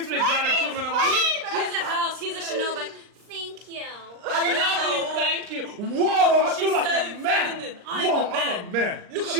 me gratitude whenever Here's a house. Here's a Chanel bag. Thank you. I love you, thank you. Whoa, I She's feel like so a man. feminine. I'm Whoa, a man. I'm a man. Look at She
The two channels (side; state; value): left; late; 39 ms